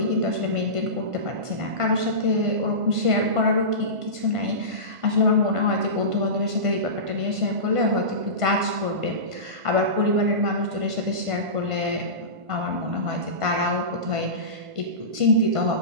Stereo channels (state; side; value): late; left; 1.5 ms